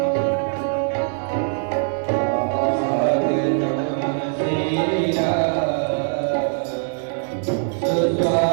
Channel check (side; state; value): left; silent; digital silence